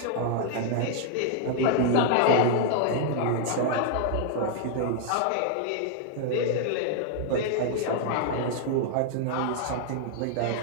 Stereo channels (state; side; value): different; both; correlation 0.00